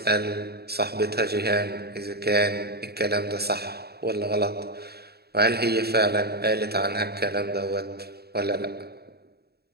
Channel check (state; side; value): late; left; 0.46 ms